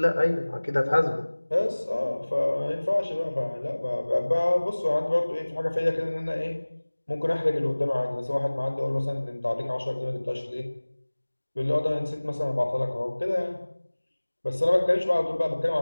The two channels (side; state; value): both; inverted; correlation -1.00